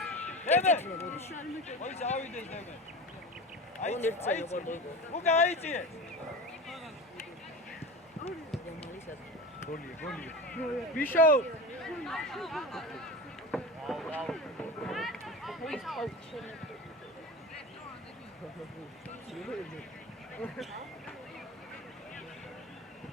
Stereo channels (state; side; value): normal; both; correlation 0.29